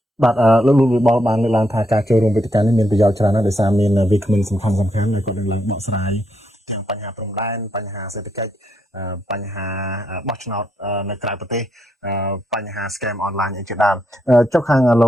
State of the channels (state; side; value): normal; both; correlation 0.78